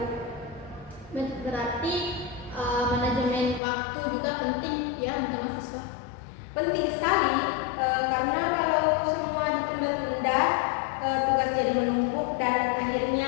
Berarti manajemen waktu juga penting ya untuk mahasiswa. Penting sekali, karena kalau semua ditunda-tunda, tugas jadi menumpuk dan akhirnya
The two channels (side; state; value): right; drops out; at 3.6 s